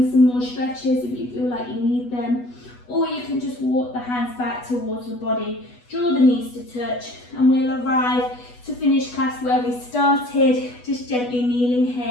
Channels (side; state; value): right; late; 8.2 ms